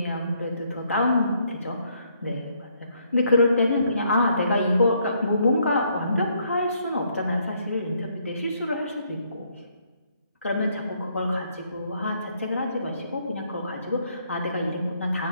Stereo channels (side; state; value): both; inverted; correlation -0.70